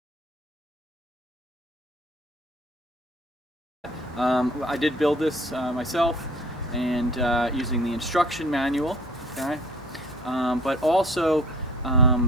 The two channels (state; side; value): normal; both; correlation 0.51